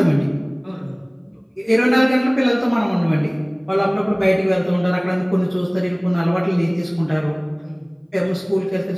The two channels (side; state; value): both; identical; correlation 1.00